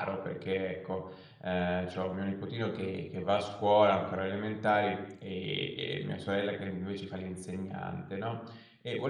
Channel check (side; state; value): both; identical; correlation 1.00